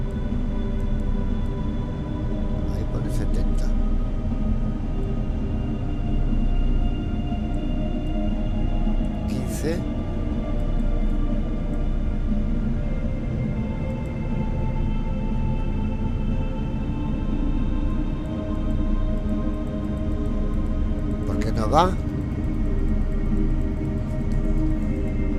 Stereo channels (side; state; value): both; identical; correlation 1.00